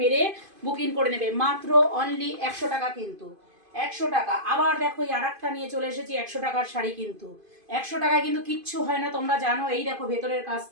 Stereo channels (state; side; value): late; left; 2.5 ms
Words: বুকিং করে নেবে, মাত্র অনলি 100 টাকা কিন্তু। 100 টাকা। আবার দেখো এই আর একটা নিয়ে চলে এসেছি 100 টাকার শাড়ি, কিন্তু 100 টাকায় কিন্তু কিচ্ছু হয় না, তোমরা জানো। এই দেখো ভেতরের